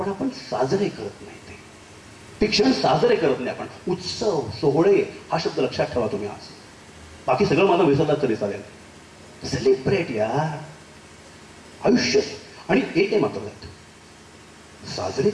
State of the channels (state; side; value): identical; both; correlation 1.00